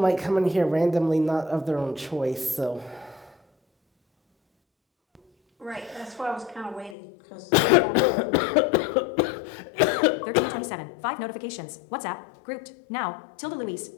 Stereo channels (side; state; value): right; drops out; at 7.0 s